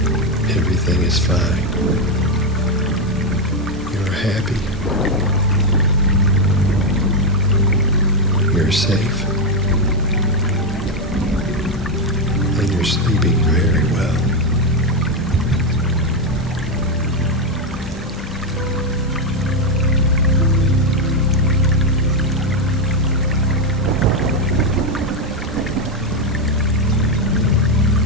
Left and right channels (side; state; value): both; normal; correlation 0.06